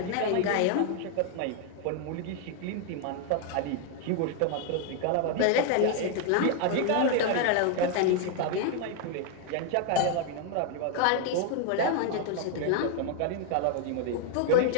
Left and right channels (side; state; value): both; different; correlation 0.00